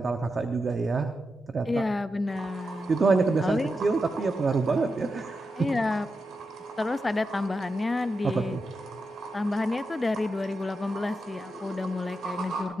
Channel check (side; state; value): both; normal; correlation 0.88